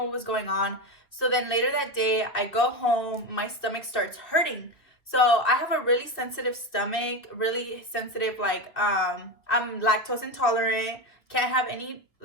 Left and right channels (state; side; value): late; right; 2.5 ms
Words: what was going on. So then later that day, I go home, my stomach starts hurting. So I have a really sensitive stomach, really sensitive, like, I'm lactose intolerant, can't have any